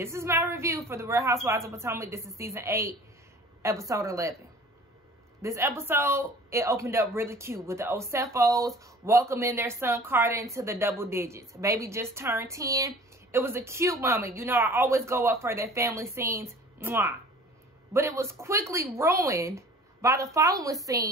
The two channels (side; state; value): both; normal; correlation 0.46